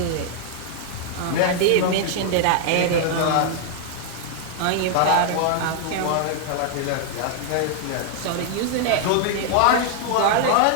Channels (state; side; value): different; both; correlation 0.00